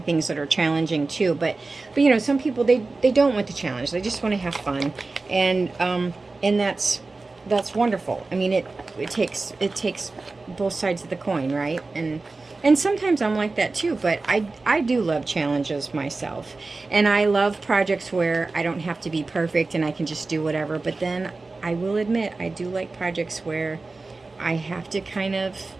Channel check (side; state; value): left; quieter; 3.6 dB